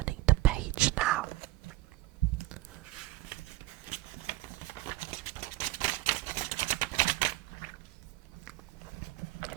the page now.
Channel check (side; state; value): left; quieter; 18.3 dB